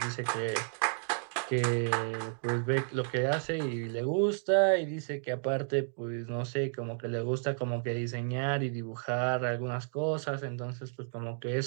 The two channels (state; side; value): silent; left; digital silence